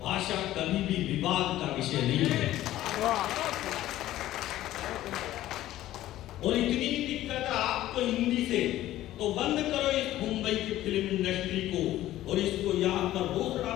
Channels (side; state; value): right; quieter; 14.4 dB